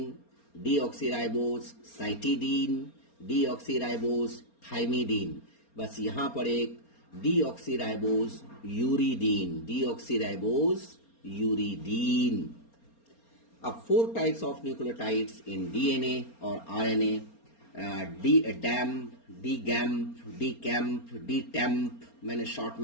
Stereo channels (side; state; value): right; late; 4.3 ms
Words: deoxyribose cytidine, deoxyribose thymidine. बस यहां पर एक डीऑक्सीराइबोस यूरिडीन, डीऑक्सीराइबोस यूरिडीन। अब 4 types of nucleotides in DNA और RNA, dAMP, d gamp, d camp, d tamp मैंने शॉर्ट